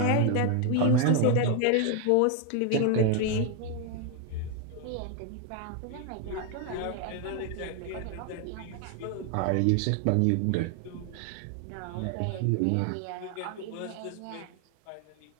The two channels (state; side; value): different; both; correlation 0.01